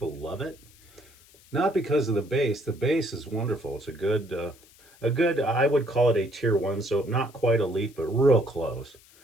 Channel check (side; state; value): left; noise; hiss, 27 dB below the sound